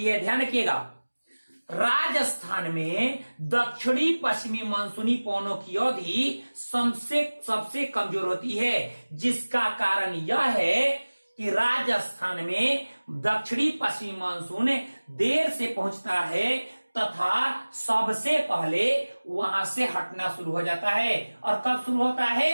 है। ध्यान रखिएगा, राजस्थान में दक्षिणी पश्चिमी मानसूनी पवनों की अवधि सबसे कमजोर होती है, जिसका कारण यह है कि राजस्थान में दक्षिणी पश्चिमी मानसून देर से पहुंचता है तथा सबसे पहले वहां से हटना शुरू हो जाता है। और कब शुरू होता है?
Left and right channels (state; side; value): inverted; both; correlation -1.00